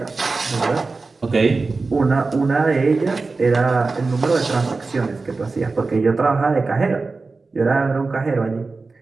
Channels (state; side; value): quieter; left; 3.9 dB